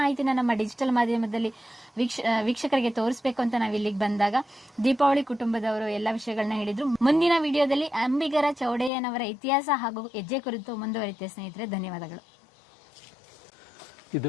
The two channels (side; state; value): right; drops out; at 8.9 s